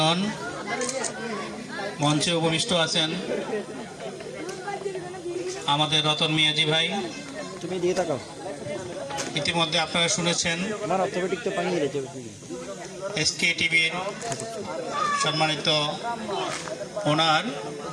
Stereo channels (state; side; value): identical; both; correlation 1.00